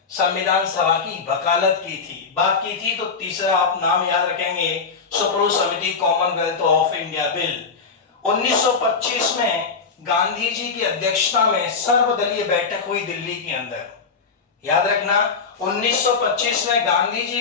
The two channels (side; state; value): right; quieter; 5.1 dB